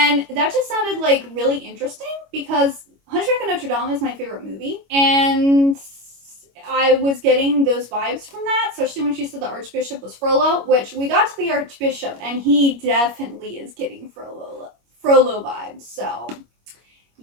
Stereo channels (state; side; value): late; left; 25 ms